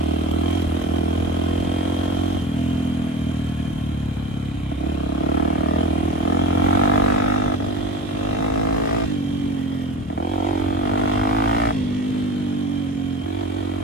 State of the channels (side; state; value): both; normal; correlation 0.31